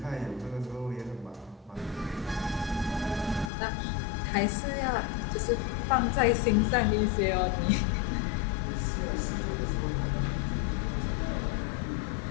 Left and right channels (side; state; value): right; drops out; at 3.5 s